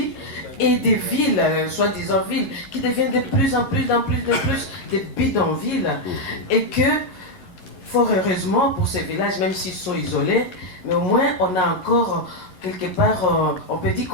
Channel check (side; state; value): right; late; 11 ms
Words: et des villes, soi-disant villes, qui deviennent de plus en plus des bidonvilles. Et que, fort heureusement pour ces villages, même s'ils sont isolés, mais au moins on a encore, quelque part, on peut dire